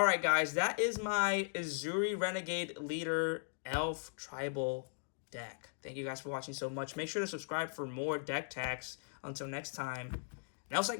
guys, that is my Ezuri Renegade Leader Elf Tribal deck. Thank you guys for watching so much. Make sure to subscribe for more deck tags. Until next time, Nelside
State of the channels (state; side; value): silent; right; digital silence